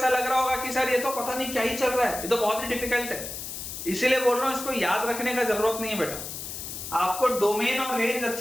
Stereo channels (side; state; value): left; noise; hiss, 8 dB below the sound